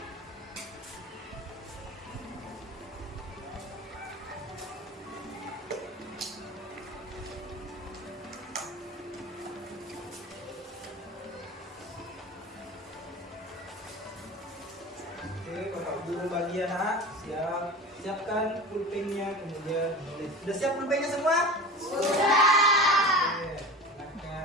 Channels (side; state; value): both; normal; correlation 0.33